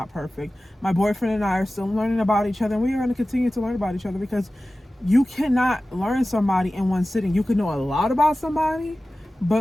perfect. My boyfriend and I are still learning about each other, and we are going to continue to learn about each other because you cannot learn somebody in one sitting. You can know a lot about somebody,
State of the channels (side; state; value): both; normal; correlation 0.96